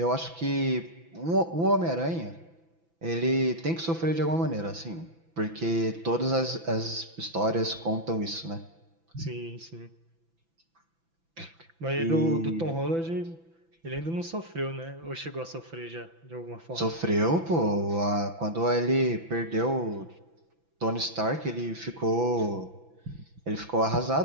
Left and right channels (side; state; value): left; late; 6.0 ms